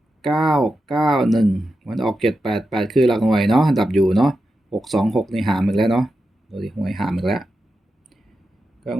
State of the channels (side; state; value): both; normal; correlation 0.89